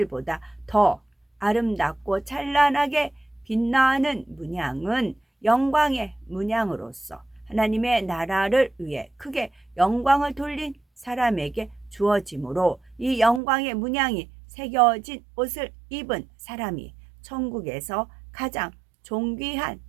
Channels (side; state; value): left; drops out; at 13.4 s